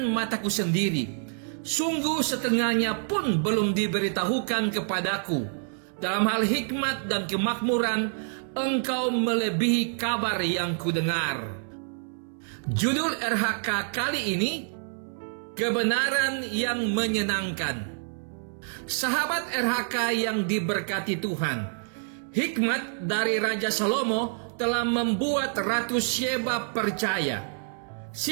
mataku sendiri. Sungguh setengahnya pun belum diberitahukan kepadaku. Dalam hal hikmat dan kemakmuran, engkau melebihi kabar yang kudengar." Judul RHK kali ini, kebenaran yang menyenangkan. Sahabat RHK yang diberkati Tuhan, hikmat dari Raja Salomo telah membuat Ratu Sheba percaya.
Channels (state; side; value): silent; left; 60 dB below the other